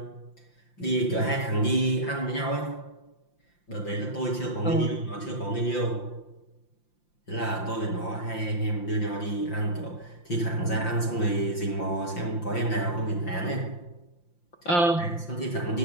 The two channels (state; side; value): late; right; 5.8 ms